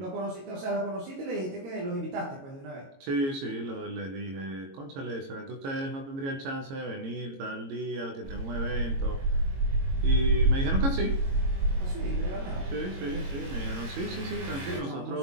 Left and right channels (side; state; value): left; late; 22 ms